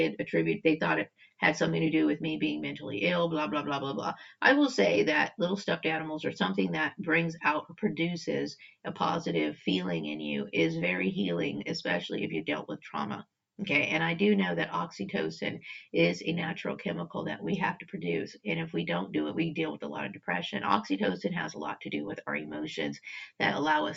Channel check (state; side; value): identical; both; correlation 1.00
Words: they thought it had something to do with me being mentally ill, blah, blah, blah, blah, blah. I will say that little stuffed animals are something that brings out or produces a positive feeling in you is very healing, especially if you dealt with trauma. Okay, and I do know that oxytocin is a natural chemical that we have to produce. And if we don't do it, we deal with a lot of depression. Oxytocin has a lot to do with our emotions that allow